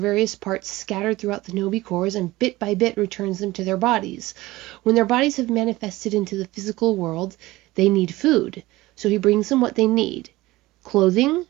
parts scattered throughout the Hinobi cores and bit by bit returns them to their bodies. When their bodies have manifested into the physical world, they need food, so he brings them what they need: clothing,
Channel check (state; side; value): quieter; left; 18.9 dB